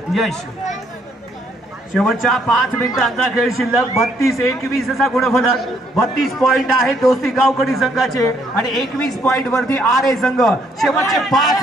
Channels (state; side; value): normal; both; correlation 0.69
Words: यश शेवटच्या 5 मिनिटांचा खेळ शिल्लक 32-21 असा गुणफलक. 32 पॉइंट आहेत दोस्ती गावकडी संघाचे आणि 21 पॉइंट वरती आरे संघ. शेवटचे